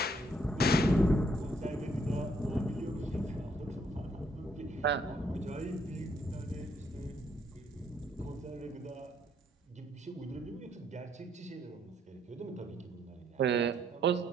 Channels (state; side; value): normal; both; correlation 0.70